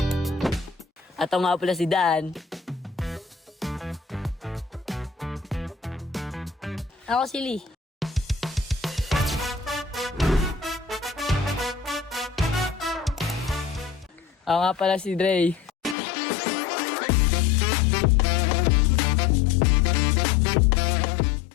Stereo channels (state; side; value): drops out; right; at 16.0 s